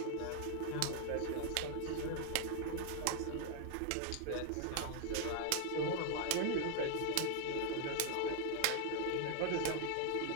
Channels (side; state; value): both; different; correlation 0.00